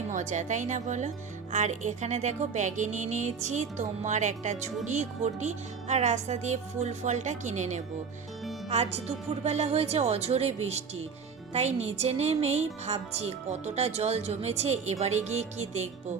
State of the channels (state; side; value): quieter; left; 5.9 dB